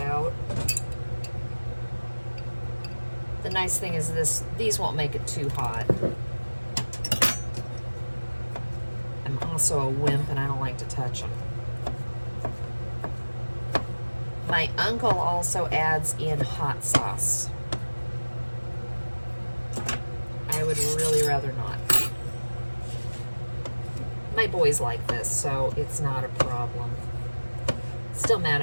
The nice thing is these won't make it too hot. I'm also a wimp and I don't like to touch them. My uncle also adds in hot sauce. I would really rather not. My boys like this, so it's not a problem. Still mad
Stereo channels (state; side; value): inverted; both; correlation -1.00